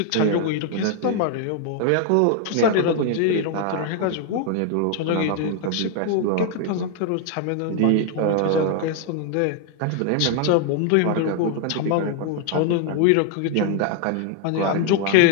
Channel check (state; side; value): different; both; correlation 0.00